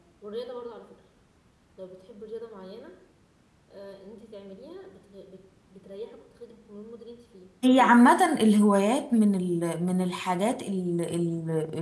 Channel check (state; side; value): identical; both; correlation 1.00